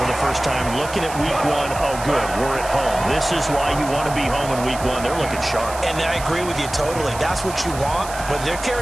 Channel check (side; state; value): right; noise; hiss, 13 dB below the sound